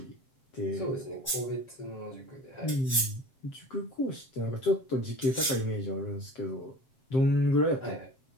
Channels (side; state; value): right; late; 7.6 ms